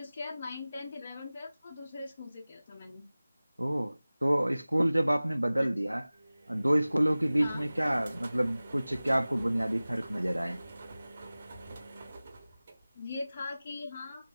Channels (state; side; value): inverted; both; correlation -0.98